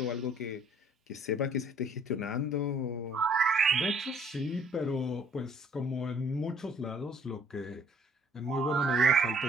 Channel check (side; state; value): both; normal; correlation 0.59